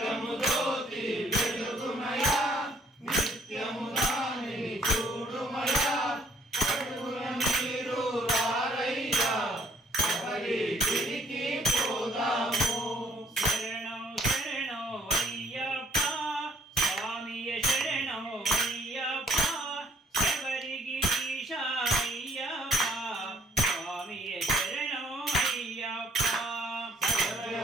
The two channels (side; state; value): both; normal; correlation 0.62